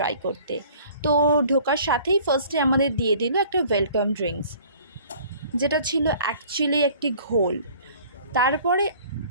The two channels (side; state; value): both; inverted; correlation -0.51